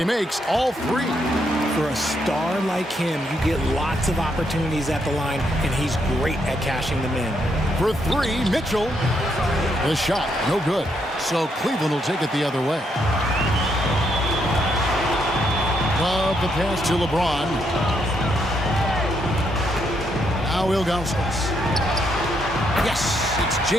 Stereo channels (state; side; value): normal; both; correlation 0.76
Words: makes all 3. For a star like him, you get lots of opportunities at the line, and he's great at cashing them in. For 3, Mitchell. The shot, no good. So Cleveland will take it the other way. Love the pass to LeBron. Now Ilgauskas. Yes, it's